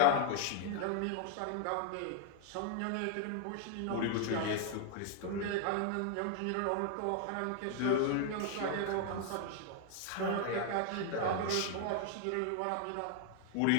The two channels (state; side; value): different; both; correlation 0.00